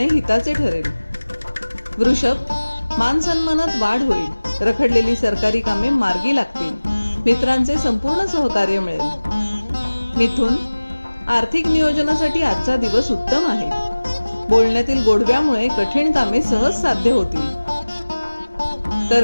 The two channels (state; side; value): inverted; both; correlation -1.00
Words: हिताचे ठरेल. वृषभ, मान सन्मानात वाढ होईल. रखडलेली सरकारी कामे मार्गी लागतील. मित्रांचे संपूर्ण सहकार्य मिळेल. मिथुन, आर्थिक नियोजनासाठी आजचा दिवस उत्तम आहे. बोलण्यातील गोडव्यामुळे कठीण कामे सहज साध्य होतील.